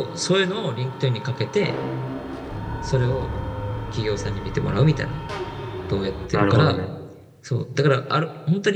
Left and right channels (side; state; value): both; identical; correlation 1.00